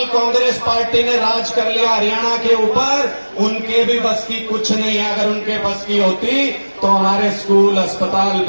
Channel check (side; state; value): both; inverted; correlation -1.00